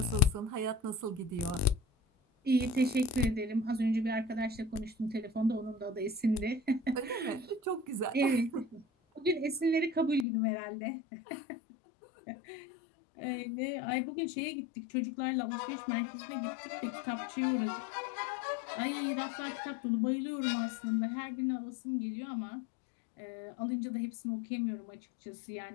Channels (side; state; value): right; drops out; at 10.2 s